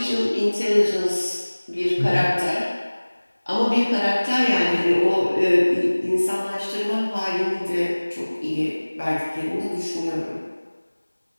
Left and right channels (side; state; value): both; inverted; correlation -1.00